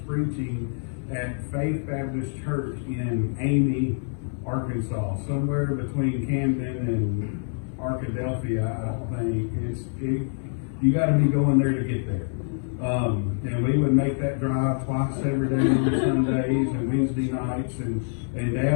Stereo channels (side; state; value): right; silent; digital silence